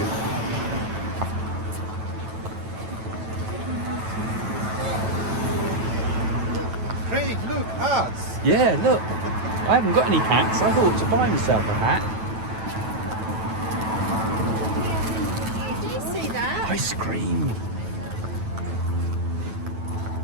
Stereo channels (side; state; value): left; late; 9.1 ms